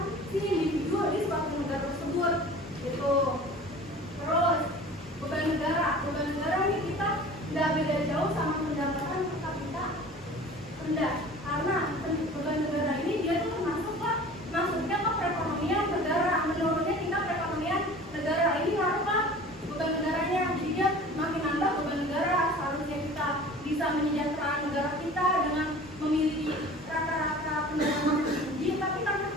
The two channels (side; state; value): both; normal; correlation 0.42